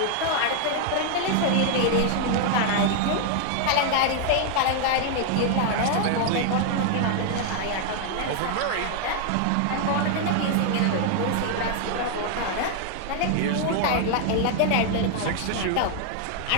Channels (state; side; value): different; both; correlation 0.00